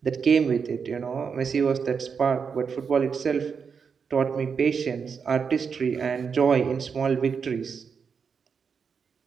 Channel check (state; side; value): quieter; left; 6.1 dB